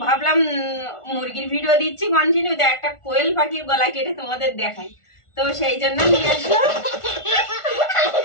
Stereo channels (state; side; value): late; right; 1.4 ms